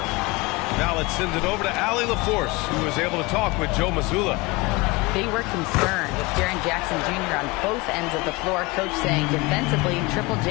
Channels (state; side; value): quieter; right; 24.0 dB